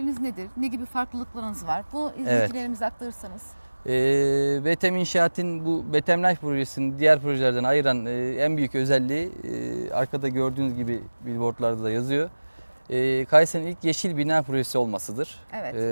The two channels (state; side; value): inverted; both; correlation -1.00